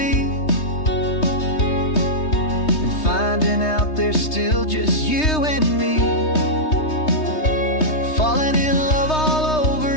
and finding out there's still just you and me. Falling in love all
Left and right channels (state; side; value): late; right; 3.2 ms